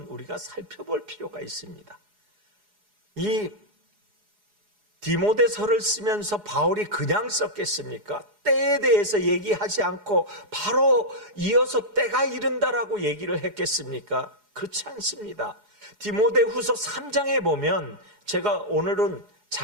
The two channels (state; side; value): late; left; 4.8 ms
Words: 우리가 살펴볼 필요가 있습니다. 이 디모데서를 쓰면서 바울이 그냥 썼겠습니까? 때에 대해서 얘기하지 않고 바로 이어서 때가 이른다라고 얘기를 했겠습니까? 그렇지 않습니다. 디모데후서 3장에 보면 제가 오늘은